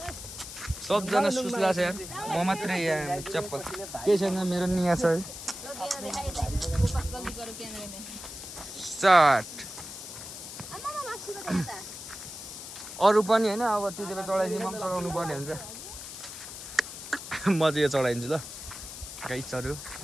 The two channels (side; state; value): left; noise; hiss, 11 dB below the sound